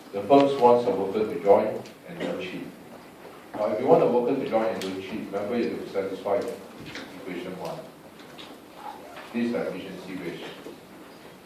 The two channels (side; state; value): both; identical; correlation 1.00